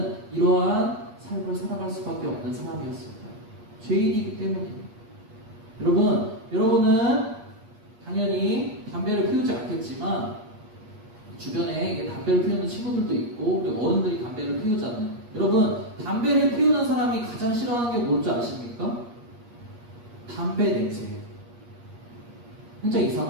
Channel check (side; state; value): left; late; 8.4 ms